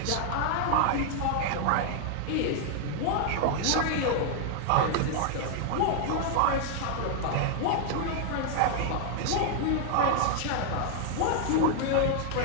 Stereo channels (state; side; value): different; both; correlation 0.00